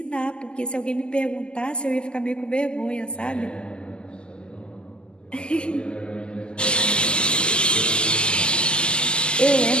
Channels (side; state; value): right; late; 0.049 ms